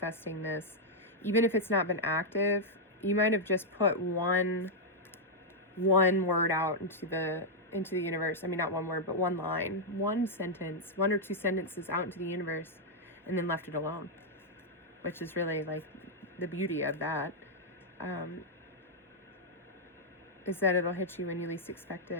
this. Even if it's not been active, you might have just put one word out into the universe. I mean, not one word, but one line, one sentence, one or two sentences out into the universe, and then left it alone, which is really like the beauty of that, is that it'll hit you when you least expect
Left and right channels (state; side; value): normal; both; correlation -0.04